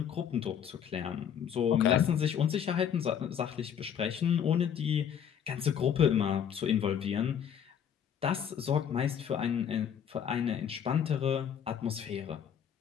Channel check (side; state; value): right; quieter; 8.5 dB